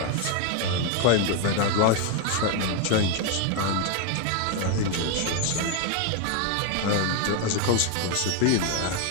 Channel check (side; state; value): both; different; correlation 0.01